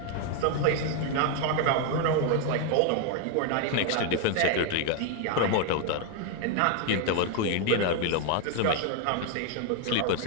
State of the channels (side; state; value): both; different; correlation 0.01